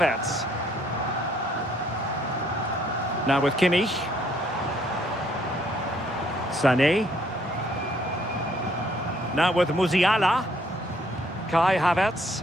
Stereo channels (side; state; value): both; normal; correlation 0.65